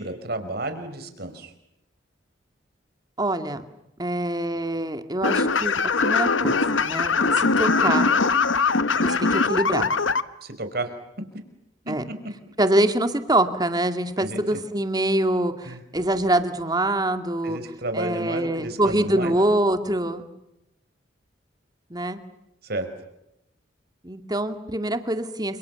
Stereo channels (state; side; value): normal; both; correlation 0.43